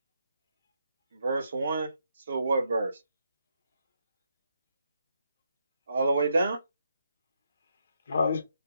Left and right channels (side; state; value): both; inverted; correlation -0.80